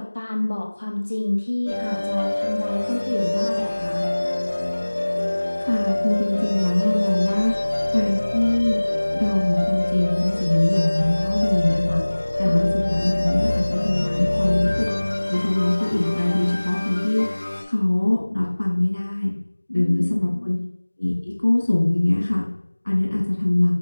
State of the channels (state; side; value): inverted; both; correlation -1.00